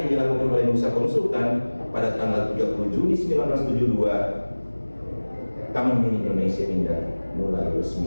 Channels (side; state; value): both; inverted; correlation -1.00